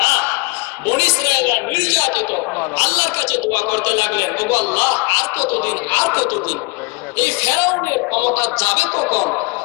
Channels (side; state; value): right; quieter; 28.4 dB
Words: বনী ইসরায়েলরা নির্যাতিত, আল্লাহর কাছে দোয়া করতে লাগলেন, ওগো আল্লাহ আর কতদিন, আর কতদিন? এই ফেরাউনের ক্ষমতা যাবে কখন?